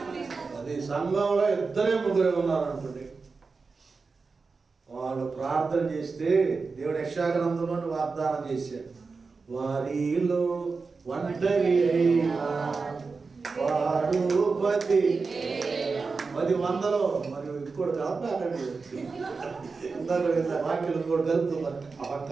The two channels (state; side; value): quieter; left; 4.5 dB